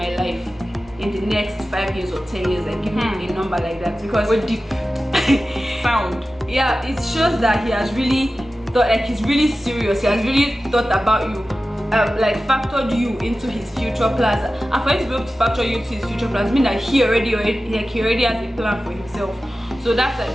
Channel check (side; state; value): both; normal; correlation 0.94